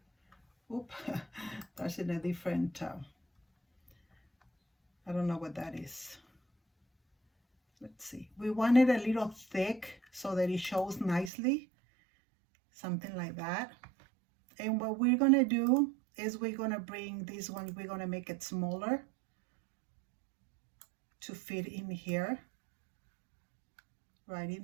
Oop, that's in a different, I don't know what that is. Let's see. We want it a little thick so that it shows nicely, something like that. And what we're gonna do is we're gonna bring this one, we're gonna make it smaller to fit in here, right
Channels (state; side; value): drops out; left; at 11.3 s